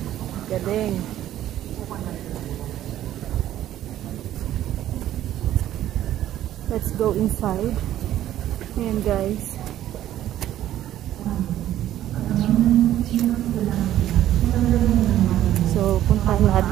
Galing. Let's go inside. Ayan guys. So, puntahan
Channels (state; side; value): quieter; left; 12.5 dB